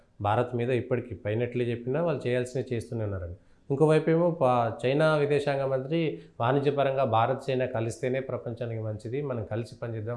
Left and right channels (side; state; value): both; identical; correlation 1.00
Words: భారత్ మీద ఇప్పటికీ పైనట్లే చెప్పినా వాళ్ళు చేయాల్సినవి చేస్తూనే ఉన్నారని. ఇంకోవైపు ఏమో చైనా విదేశాంగ మంత్రి వాణిజ్యపరంగా భారత్, చైనా కలిస్తేనే ప్రపంచానికి మంచిది, మనం కలిసి